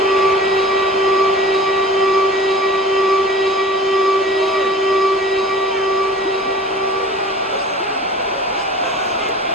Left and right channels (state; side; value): normal; both; correlation 0.41